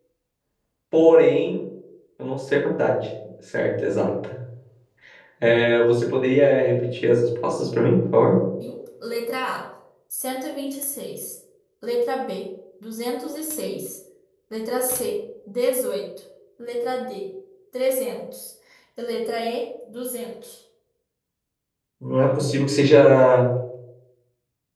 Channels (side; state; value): both; identical; correlation 1.00